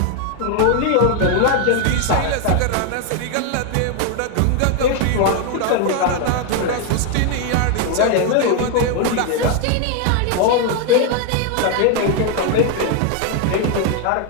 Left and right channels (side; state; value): both; different; correlation 0.00